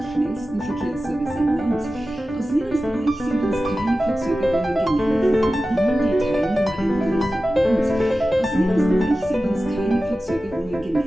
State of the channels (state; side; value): normal; both; correlation 0.94